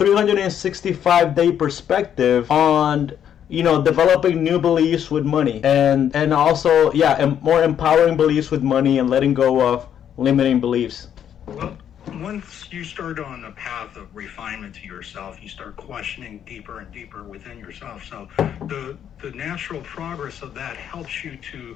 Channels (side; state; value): right; quieter; 9.4 dB